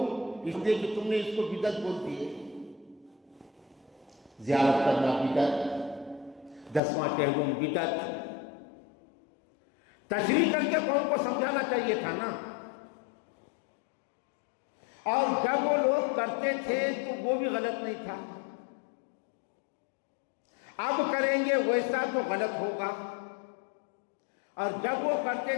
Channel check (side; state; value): right; drops out; at 6.8 s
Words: اس لیے کہ تم نے اس کو بدعت بول دیے. زیارت کرنا بدعت، 10واں کہلوم بدعت. تشریح کر کے قوم کو سمجھانا چاہیے تھا نا. اور جب وہ لوگ کرتے تھے تو وہ بھی غلط نہیں تھا. اب کریں گے ویسا تو غلط ہوگا، اور جب وہ کرتے